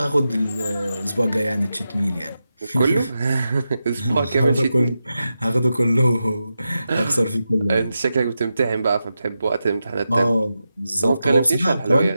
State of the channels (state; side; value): inverted; both; correlation -0.90